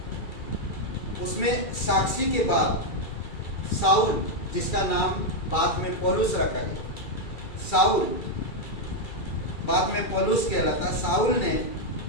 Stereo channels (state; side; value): late; right; 2.3 ms